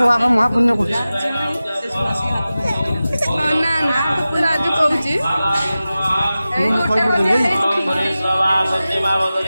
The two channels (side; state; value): both; inverted; correlation -0.95